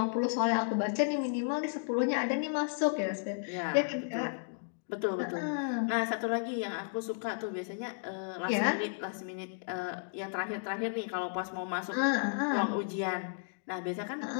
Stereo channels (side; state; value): right; silent; digital silence